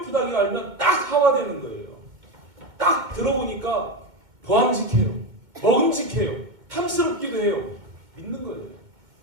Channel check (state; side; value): late; left; 2.0 ms